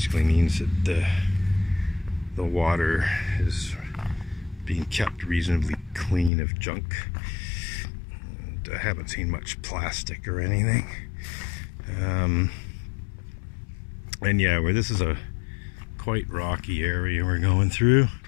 means that the water is being kept reasonably clean of junk. And I haven't seen much plastic or anything. And yeah, where this is a quite rocky area we're going through.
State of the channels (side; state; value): right; drops out; at 6.3 s